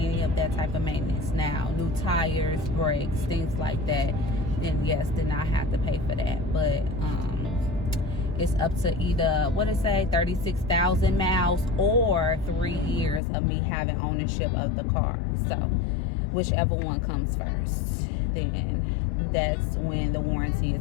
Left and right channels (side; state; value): right; drops out; at 13.2 s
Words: of that type of maintenance. Now new tires, brakes, things like that, then yes, then I have to pay for that. But it's up to either, what it say, 36,000 miles or 3 years of me having ownership of the car. So whichever one comes first, then that's when the warranty